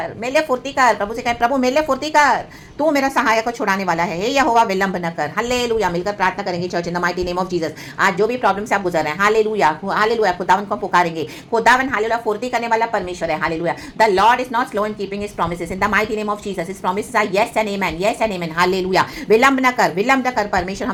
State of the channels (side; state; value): both; identical; correlation 1.00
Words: मेले फुर्ती कर। प्रभु से कहे प्रभु मेले फुर्ती कर, तू मेरा सहायक को छुड़ाने वाला है, हे यहोवा विलंब न कर, हालेलुया। मिलकर प्रार्थना करेंगे church in the mighty name of Jesus. आज जो भी प्रॉब्लम से आप गुजर रहे हैं, हालेलुया, हालेलुया, खुदावन को पुकारेंगे, खुदावन हालेलुया फुर्ती करने वाला परमेश्वर है, hallelujah. The Lord is not slow in keeping his promises, in the mighty name of Jesus. His promises are yes and amen, yes and amen, hallelujah. विलंब न कर, विलंब न कर परमेश्वर।